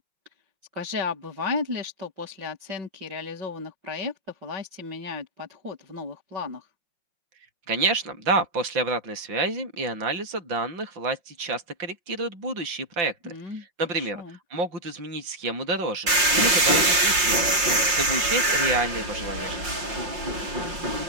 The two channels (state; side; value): late; left; 5.7 ms